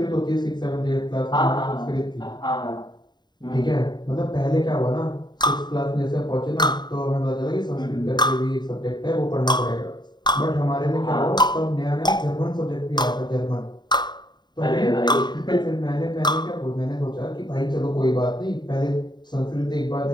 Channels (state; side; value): late; right; 0.21 ms